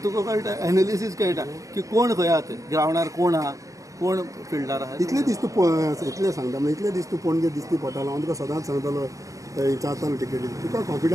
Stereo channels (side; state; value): left; late; 0.16 ms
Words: तुका कळटा एनालिसीस कळटा की कोण खंय आहा ते ग्रावंडार कोण आहा कोण फिल्डार आहा इतले दीस तूं इतलें सांगता म्हणजे इतले दीस तू पणजे दिसती पडटालो हांव तुका सदांच सांगतालो विचारतालो टिकेटी तुका